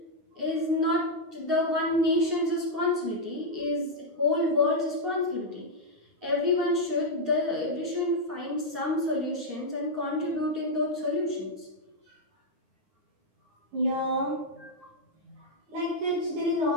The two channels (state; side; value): late; left; 9.6 ms